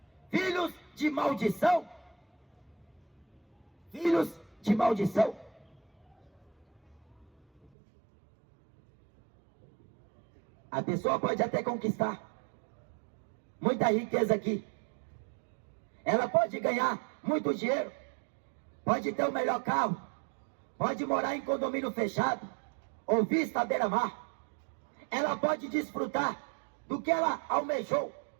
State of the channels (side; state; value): left; drops out; at 7.7 s